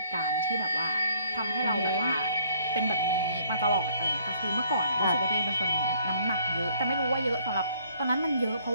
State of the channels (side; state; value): both; inverted; correlation -0.62